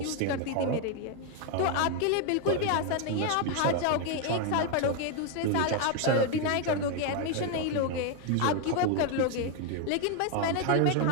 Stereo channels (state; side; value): different; both; correlation 0.01